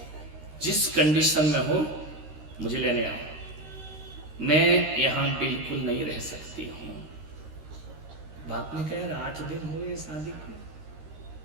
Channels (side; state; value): left; late; 13 ms